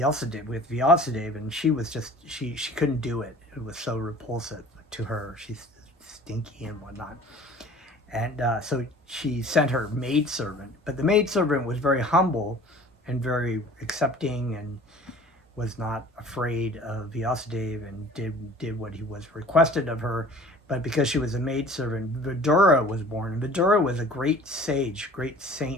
and she was just she couldn't do it. It was so repulsive to her. She's stinky and whatnot. And so she sent her maidservant, but the maidservant was very humble and very accepting and was not afraid of Vyasadeva and did what he was requested of her. But because she was a maidservant, Vidura was born. And Vidura was a great sage, great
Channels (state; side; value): normal; both; correlation 0.46